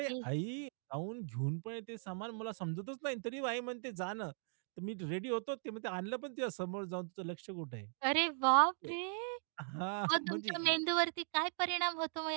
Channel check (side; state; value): left; silent; 52 dB below the other